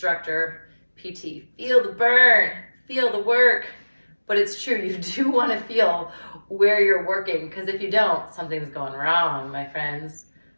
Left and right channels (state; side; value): inverted; both; correlation -1.00